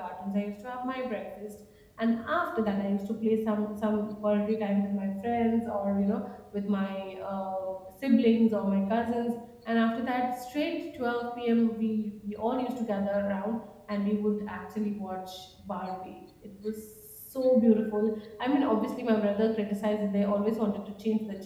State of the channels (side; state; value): both; identical; correlation 1.00